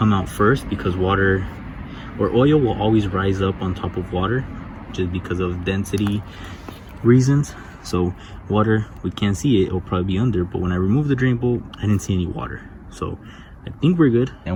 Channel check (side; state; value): both; identical; correlation 1.00